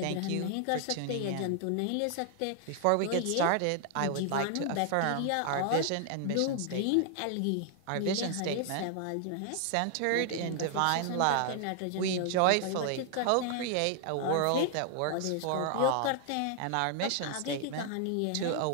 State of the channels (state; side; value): different; both; correlation 0.00